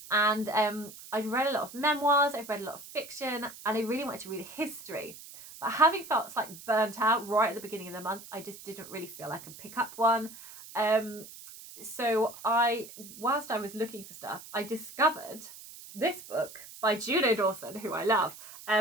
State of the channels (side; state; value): right; noise; hiss, 16 dB below the sound